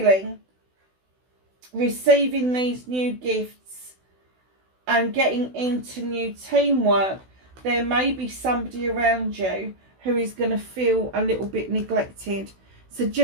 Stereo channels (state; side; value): late; left; 16 ms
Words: receiving these new gifts and getting into new teamwork, there may be somebody around you who is going to feel a little bit neglected. So